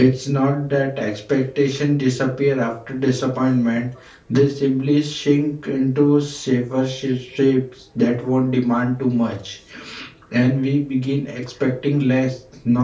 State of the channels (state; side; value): identical; both; correlation 1.00